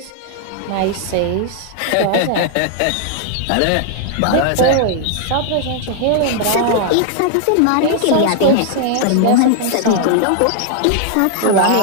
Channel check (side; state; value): both; different; correlation 0.00